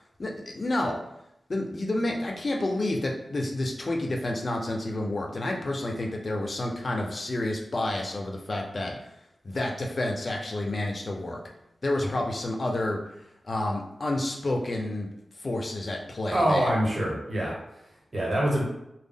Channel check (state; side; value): normal; both; correlation 0.93